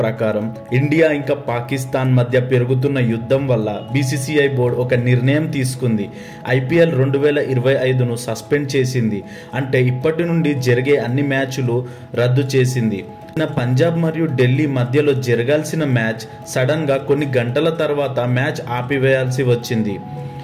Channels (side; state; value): both; identical; correlation 1.00